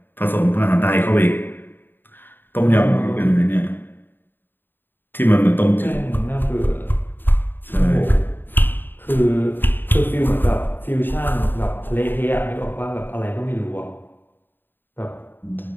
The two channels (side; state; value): right; late; 0.095 ms